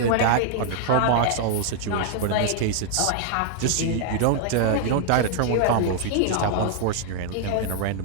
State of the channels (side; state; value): both; different; correlation 0.00